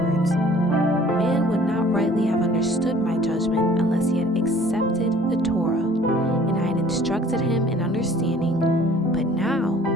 Man would not rightly have understood my judgment unless he had accepted the Torah, and I had instructed him in understanding. But now,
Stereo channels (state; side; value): normal; both; correlation 0.53